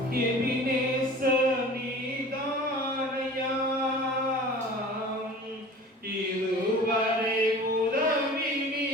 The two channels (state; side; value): normal; both; correlation 0.41